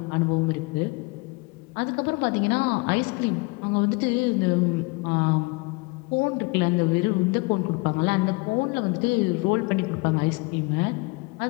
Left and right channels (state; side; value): quieter; right; 27.9 dB